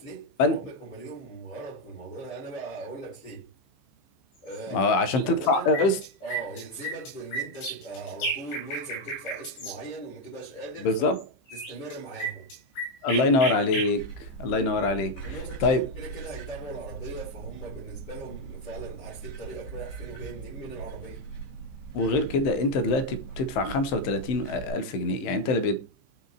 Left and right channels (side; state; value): right; late; 15 ms